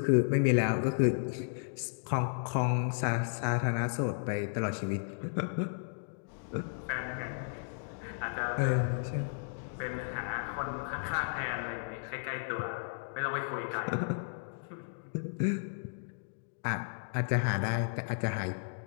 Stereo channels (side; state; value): right; silent; digital silence